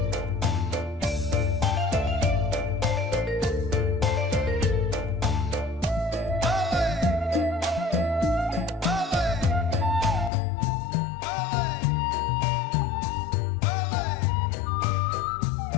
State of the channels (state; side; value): drops out; right; at 10.3 s